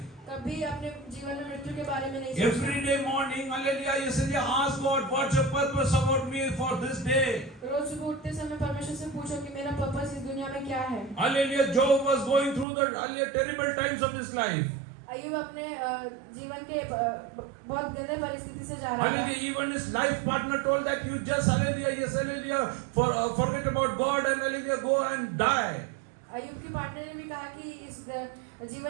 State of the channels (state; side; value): drops out; left; at 12.7 s